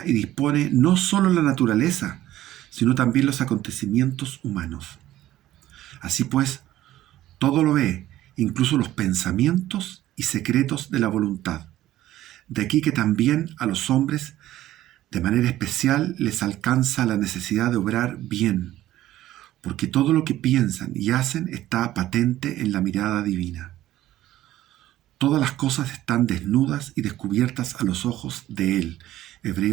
y dispone no solo la naturaleza, sino también los acontecimientos humanos. Así pues, todo lo ve, incluso los pensamientos y secretos de la voluntad. De aquí que también a los hombres, de manera especial, les alcanza la necesidad de obrar bien, porque todo lo que piensan y hacen está patente en la mirada divina. Todas las cosas están desnudas y descubiertas a los ojos de Él.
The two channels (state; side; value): quieter; left; 14.2 dB